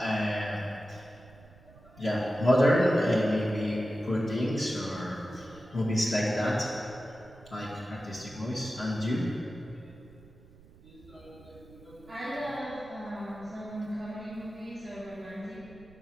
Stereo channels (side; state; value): right; noise; rumble, 23 dB below the sound